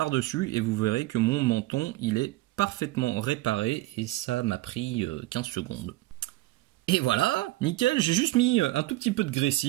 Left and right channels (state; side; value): quieter; left; 18.8 dB